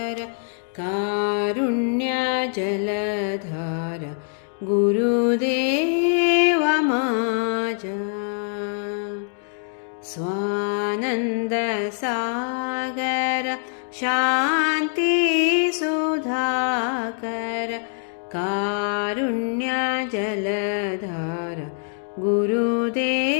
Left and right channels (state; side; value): silent; right; 63 dB below the other